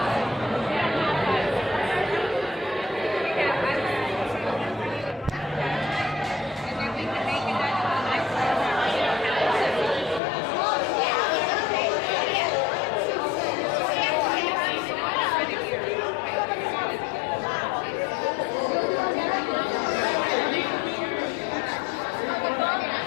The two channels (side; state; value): right; drops out; at 10.2 s